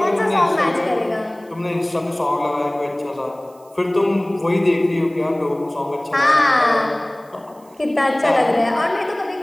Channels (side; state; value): right; noise; hiss, 30 dB below the sound